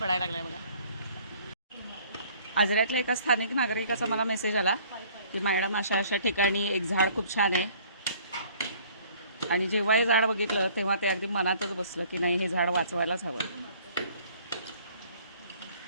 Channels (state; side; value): inverted; both; correlation -0.55